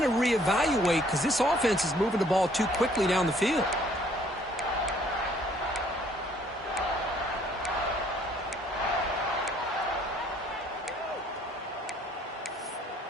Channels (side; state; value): both; normal; correlation 0.61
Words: to reevaluate because this offense is moving the ball too quickly down the field.